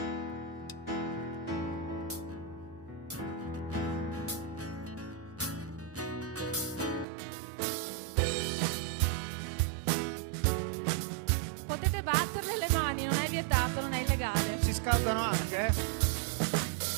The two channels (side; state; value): left; drops out; at 7.1 s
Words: Potete batterle le mani, non è vietato, non è illegale. Si scaldano anche,